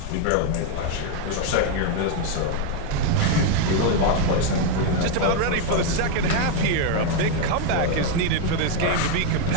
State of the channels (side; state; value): both; different; correlation 0.01